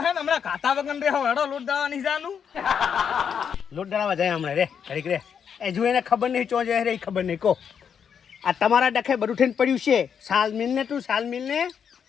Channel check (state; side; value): quieter; right; 7.4 dB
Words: ને હમણાં ખાતા વગર રે હડો લૂટ દાવા નહીં જાનું લોટ ડળાવા જાય હમણાં રે ઘડીક રે એ જો એને ખબર નહીં ચો જાય રે એ ખબર નહીં કહો આ તમારા ડખે બધું થઈને પડ્યું છે સાલ મિલ ને